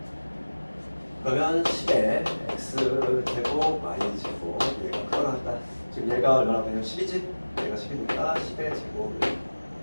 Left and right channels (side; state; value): both; inverted; correlation -1.00